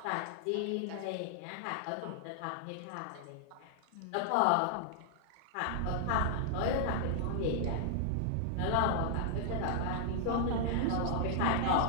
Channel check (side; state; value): both; different; correlation -0.01